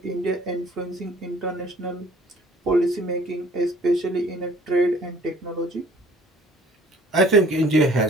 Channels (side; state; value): both; normal; correlation 0.55